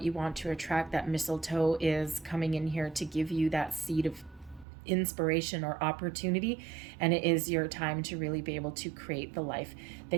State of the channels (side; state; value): left; drops out; at 4.7 s